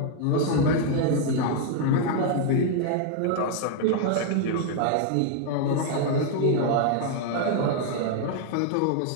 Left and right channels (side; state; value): both; different; correlation 0.00